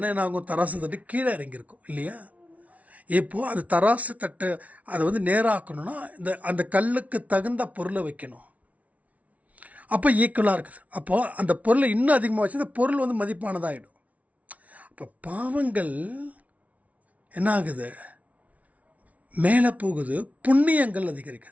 என்ன ஆகும், தராசு தட்டு கீழே இறங்கியிருக்கும் இல்லையா? இப்போது அது தராசு தட்டை அதை வந்து நேராக்கணும்னா அந்த கல்லுக்கு தகுந்த பொருளை வைக்கணும். அப்போ ஈக்குவலாக இருக்குது. அப்போது அந்த பொருளை இன்னும் அதிகமாக வச்சு அந்த பொருள் வந்து மதிப்பானதாகிடும். அப்போ பாவங்கள் என்ன ஆகுது, மேலே போகுது, புண்ணியங்கள்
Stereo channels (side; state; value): left; late; 0.068 ms